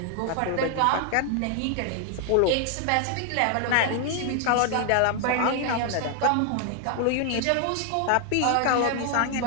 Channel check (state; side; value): different; both; correlation 0.00